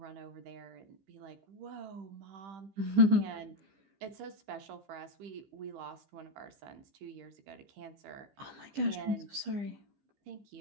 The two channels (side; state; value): left; late; 15 ms